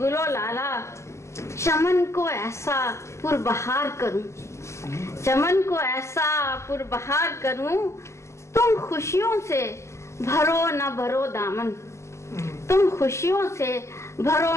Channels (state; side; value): late; right; 0.14 ms